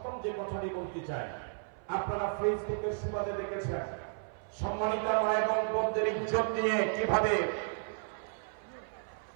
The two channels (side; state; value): left; silent; 55 dB below the other